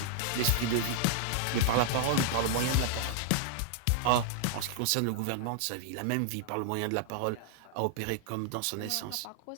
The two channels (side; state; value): both; different; correlation -0.01